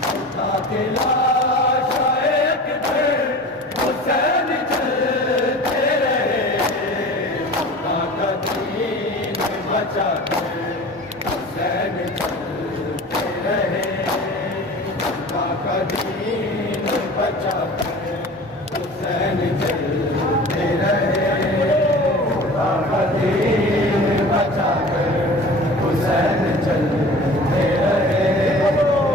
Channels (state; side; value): normal; both; correlation 0.40